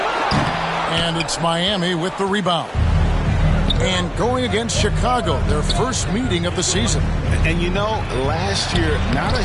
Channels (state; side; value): identical; both; correlation 1.00